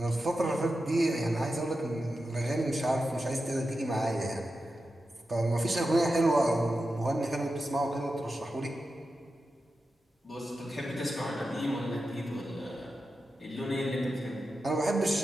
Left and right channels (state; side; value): normal; both; correlation 0.90